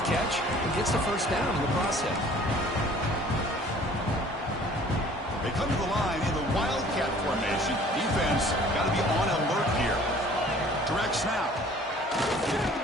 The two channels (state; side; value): normal; both; correlation 0.52